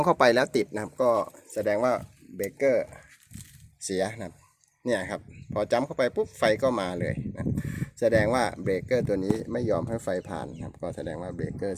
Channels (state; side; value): identical; both; correlation 1.00